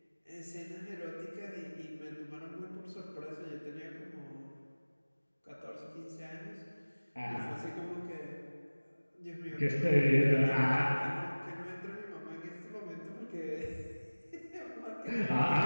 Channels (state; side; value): inverted; both; correlation -1.00